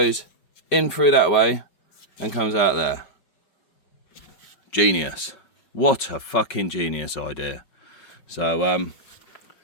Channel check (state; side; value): late; right; 5.4 ms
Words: in through that way and comes out there. Genius. What a fucking genius idea. So